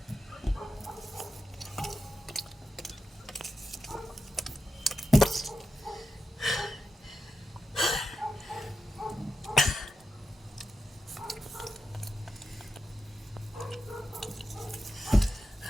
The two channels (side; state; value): both; normal; correlation 0.89